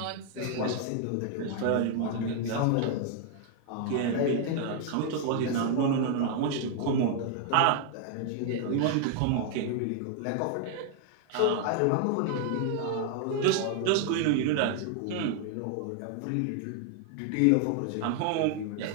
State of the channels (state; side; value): different; both; correlation 0.00